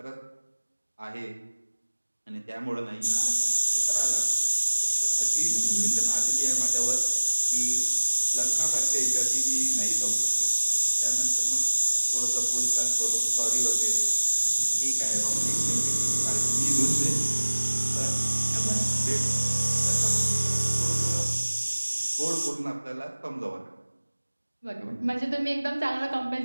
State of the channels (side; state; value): both; inverted; correlation -1.00